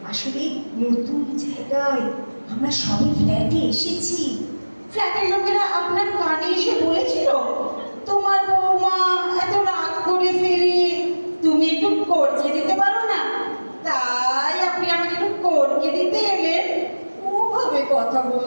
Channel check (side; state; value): both; inverted; correlation -1.00